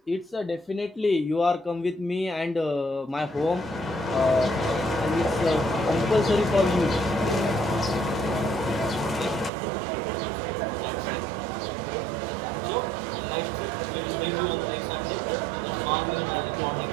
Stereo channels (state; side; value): drops out; left; at 9.5 s